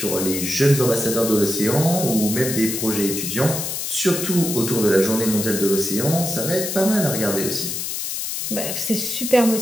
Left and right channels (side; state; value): left; noise; hiss, 3 dB below the sound